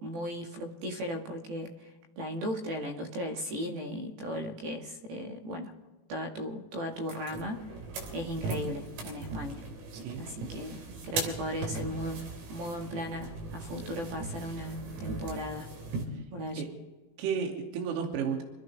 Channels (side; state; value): left; late; 18 ms